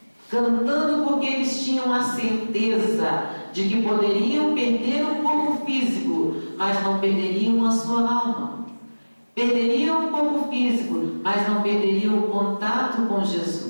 Cantando porque eles tinham a certeza de que poderiam perder o corpo físico, mas não perderiam a sua alma. Perderiam o corpo físico, mas não perderiam o contato com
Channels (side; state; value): both; inverted; correlation -1.00